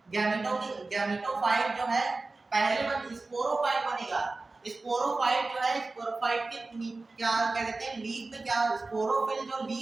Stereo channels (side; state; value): left; quieter; 3.4 dB